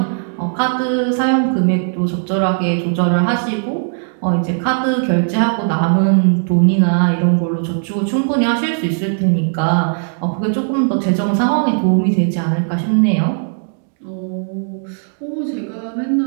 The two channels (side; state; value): left; silent; 68 dB below the other